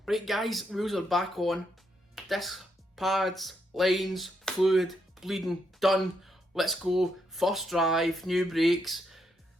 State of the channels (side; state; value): both; normal; correlation 0.79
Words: Right guys, wheels are back on. Disc, pads, lines, fluid, bleeding, done. Let's go. First drive, new brakes.